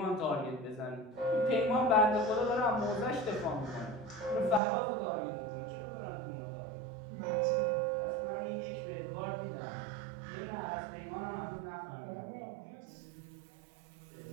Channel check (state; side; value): drops out; left; at 4.6 s